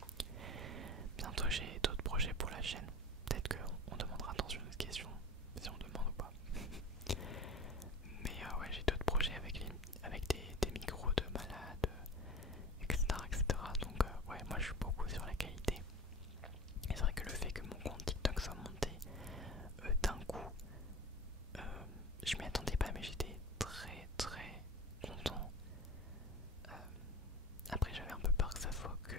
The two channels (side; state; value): both; normal; correlation 0.35